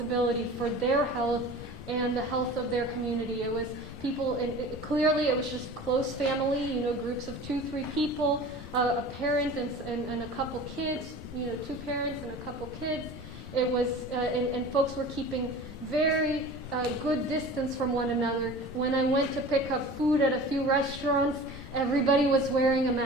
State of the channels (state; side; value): normal; both; correlation 0.39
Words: for their health and the health of their community. It was people, and clearly it was just close family, groups of 2-3 people, a parent and a couple kids, 2 parents and a couple kids. It was, and folks were keeping very good distance from one another. When I went to pick up food at a few restaurants, everybody was wearing a